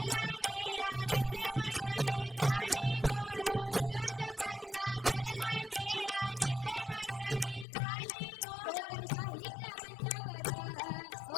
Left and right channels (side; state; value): right; drops out; at 7.7 s